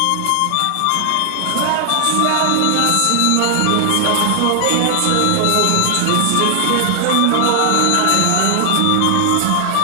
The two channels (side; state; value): both; different; correlation 0.00